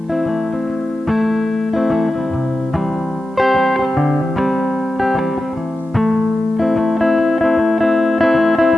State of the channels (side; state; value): both; normal; correlation 0.92